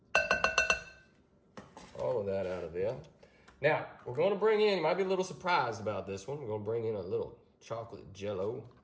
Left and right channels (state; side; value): identical; both; correlation 1.00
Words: All of that out of there. Now, we're gonna bring in, you might be a little surprised about this one, we're gonna bring in a little chocolate jello